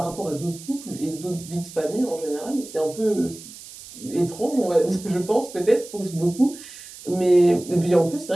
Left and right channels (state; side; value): noise; right; hiss, 16 dB below the sound